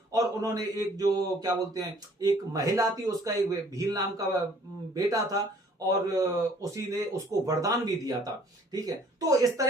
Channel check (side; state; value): both; normal; correlation 0.57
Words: और उन्होंने एक जो क्या बोलते हैं, एक महिला थी, उसका एक भील नाम का बेटा था और उसी ने उसको वरदान भी दिया था, ठीक है। तो इस